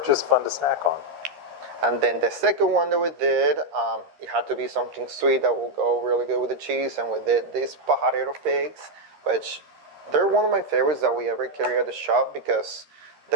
just fun to snack on. And then the second one that we did, it had to be something sweet that will go really good with the cheese. And we did these pajarero figs, which they're one of my favorites that we ever carry at the shop because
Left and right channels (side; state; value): left; late; 13 ms